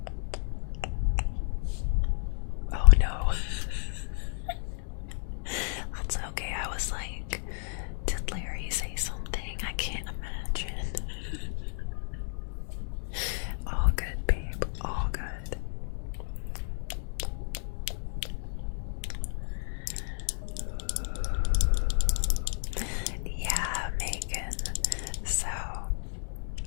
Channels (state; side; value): silent; right; 57 dB below the other